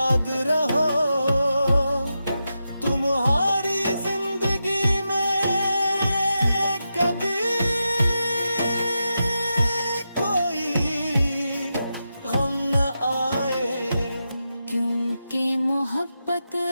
रहो, तुम्हारी जिंदगी में कभी कोई गम कि मोहब्बत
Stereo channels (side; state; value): both; inverted; correlation -0.88